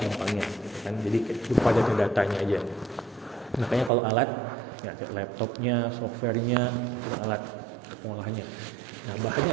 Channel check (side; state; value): left; drops out; at 3.9 s